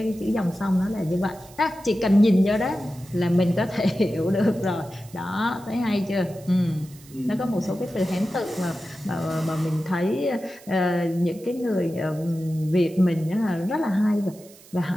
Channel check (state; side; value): noise; right; hiss, 23 dB below the sound